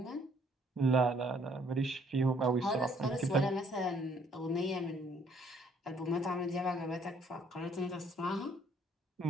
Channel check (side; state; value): both; normal; correlation 0.64